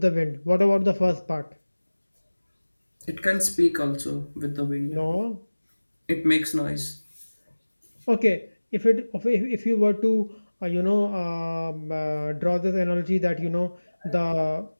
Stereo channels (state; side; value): inverted; both; correlation -1.00